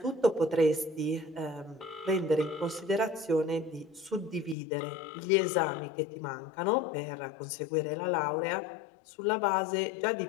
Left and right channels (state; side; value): drops out; right; at 4.5 s